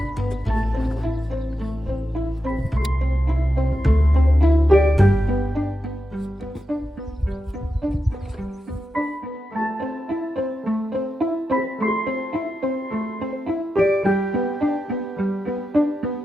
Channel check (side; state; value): both; normal; correlation 0.88